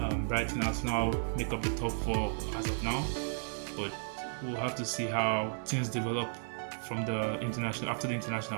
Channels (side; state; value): left; silent; digital silence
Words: Brighton, Arsenal make up the top 4 as of now, but we'll have to see how things develop from after the